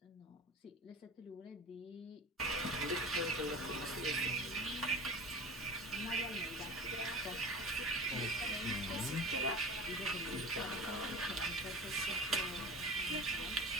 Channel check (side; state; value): both; normal; correlation 0.34